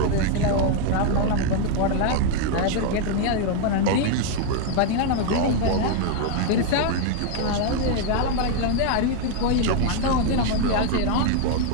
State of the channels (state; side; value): different; both; correlation 0.01